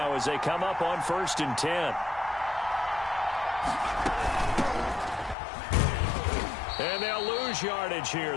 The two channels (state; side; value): drops out; right; at 5.4 s